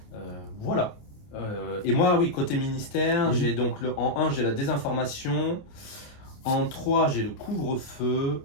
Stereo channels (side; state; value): right; late; 28 ms